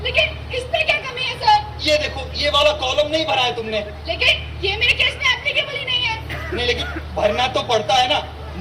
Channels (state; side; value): identical; both; correlation 1.00